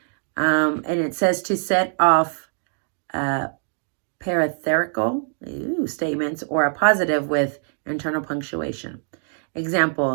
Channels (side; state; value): left; silent; 57 dB below the other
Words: And it says to set off parenthetical statements or a positive with internal punctuation.